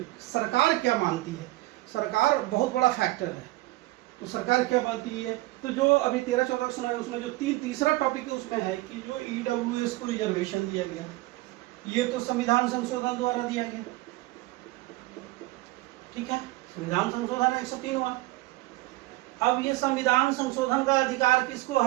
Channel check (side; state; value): left; quieter; 19.6 dB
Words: सरकार क्या मानती है। सरकार बहुत बड़ा फैक्टर है, तो सरकार क्या मानती है। तो जो अभी 13-14 सुनाई, उसमें जो तीसरा टॉपिक है उसमें है कि जो ईडब्ल्यूएस को रिजर्वेशन दिया गया, ये तो संविधान संशोधन द्वारा दिया गया, ठीक है, संविधान संशोधन 103 हुआ। अब ये संविधान संशोधन का अधिकार किसको